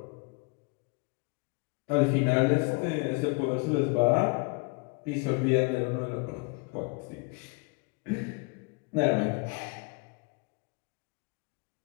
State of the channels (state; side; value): quieter; right; 30.9 dB